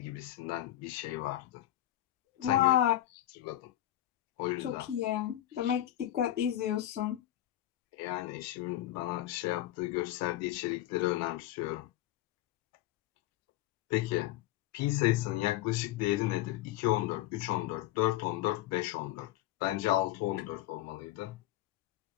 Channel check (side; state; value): right; quieter; 14.0 dB